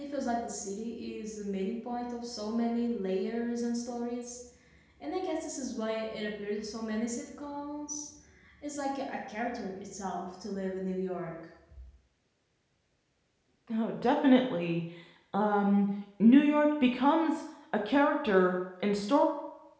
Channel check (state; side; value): identical; both; correlation 1.00